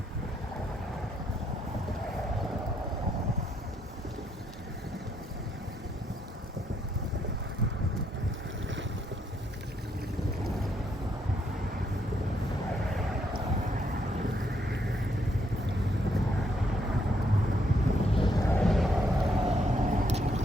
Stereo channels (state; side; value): normal; both; correlation 0.74